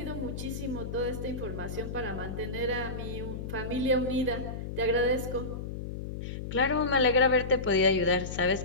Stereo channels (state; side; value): noise; left; hum, 7 dB below the sound